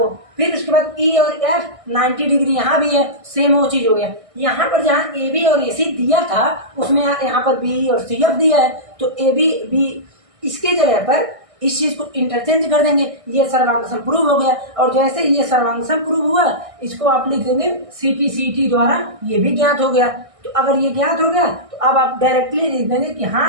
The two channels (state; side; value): late; left; 1.6 ms